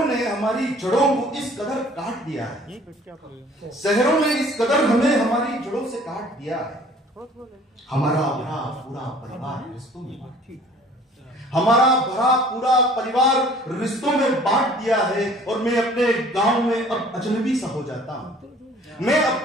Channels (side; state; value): both; normal; correlation 0.52